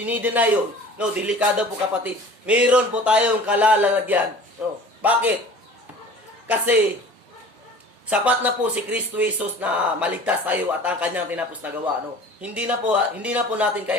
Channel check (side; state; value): both; normal; correlation 0.43